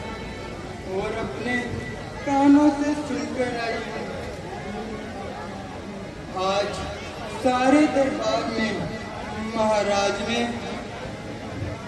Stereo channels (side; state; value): both; identical; correlation 1.00